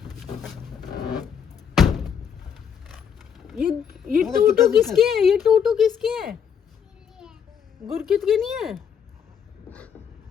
ये टूटू किसके है? ये टूटू किसके है? गुरकित के नहीं है?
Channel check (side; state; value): right; quieter; 7.6 dB